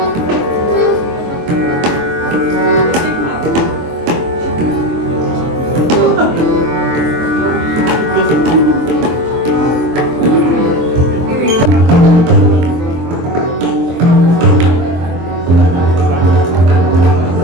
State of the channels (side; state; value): left; late; 24 ms